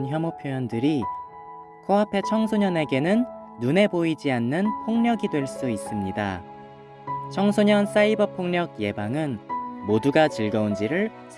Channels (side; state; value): both; identical; correlation 1.00